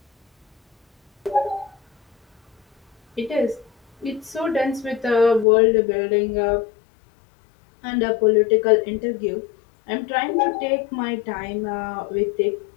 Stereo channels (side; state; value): right; drops out; at 5.5 s